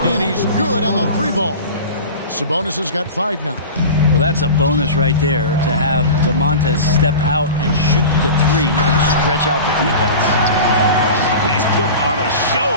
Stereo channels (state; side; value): inverted; both; correlation -0.33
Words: and he's good on the 3-ball. Sabonis has got 5 now. Well, that's a bonus right there to have DeMontes step out and shoot the 3 and stretch out the defense. He's putting on a